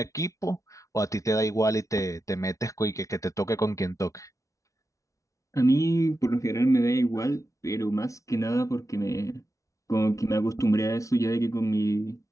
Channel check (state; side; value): late; right; 0.15 ms